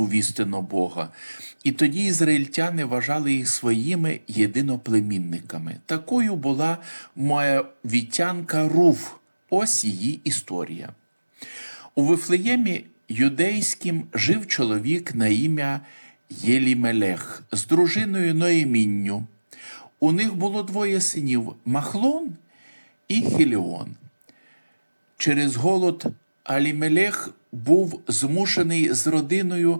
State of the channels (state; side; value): inverted; both; correlation -1.00